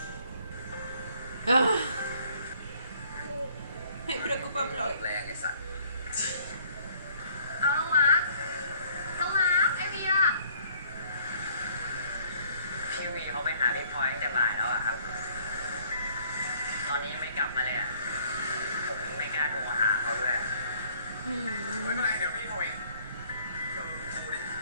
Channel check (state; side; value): inverted; both; correlation -0.60